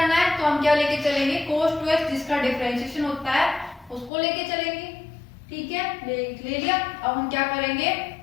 है तो हम क्या लेके चलेंगे cos 2x जिसका डिफरेंशिएशन होता है उसको लेके चलेंगे। ठीक है, ले लिया। अब हम क्या करेंगे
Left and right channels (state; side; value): drops out; right; at 4.1 s